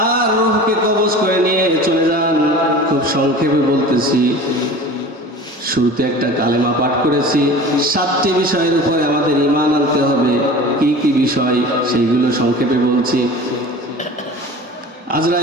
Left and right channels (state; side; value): normal; both; correlation 0.38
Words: রূহকে কবজ করে নিয়ে চলে যান। খুব সংক্ষেপে বলতেছি, শুরুতে একটা কালেমা পাঠ করেছি। 7টি বিষয়ের উপরে আমাদের ঈমান আনতে হবে। কি কি বিষয় সেইগুলো সংক্ষেপে বলছি।